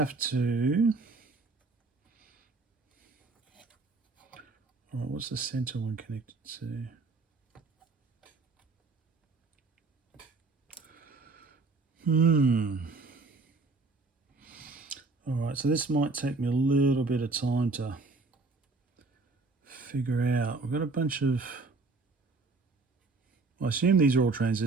to... All right, what's the center one connected to? All right, so this might take me a little bit of time to figure out. We've got a bunch of... I assume these are all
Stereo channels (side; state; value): left; quieter; 3.6 dB